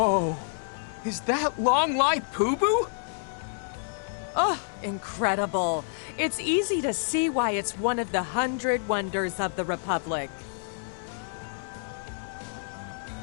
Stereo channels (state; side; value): silent; right; 59 dB below the other